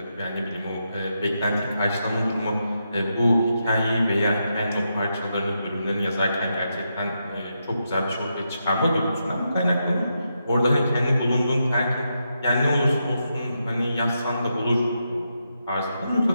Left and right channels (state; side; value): inverted; both; correlation -0.84